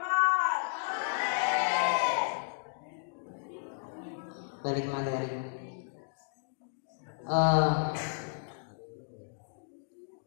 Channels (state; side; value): silent; right; digital silence